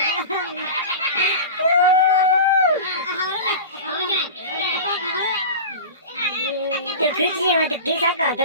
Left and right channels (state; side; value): inverted; both; correlation -0.30